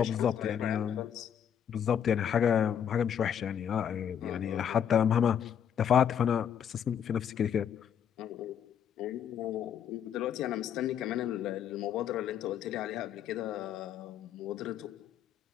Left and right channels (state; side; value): quieter; right; 8.8 dB